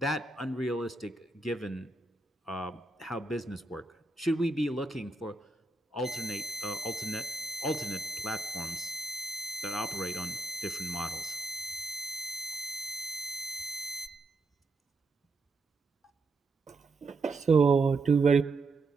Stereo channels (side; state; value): left; quieter; 3.2 dB